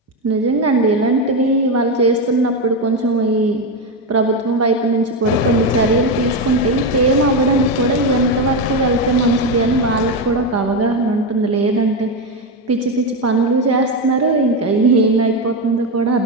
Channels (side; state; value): both; normal; correlation 0.11